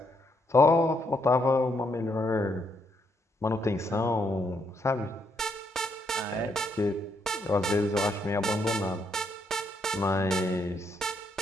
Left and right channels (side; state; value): both; normal; correlation 0.75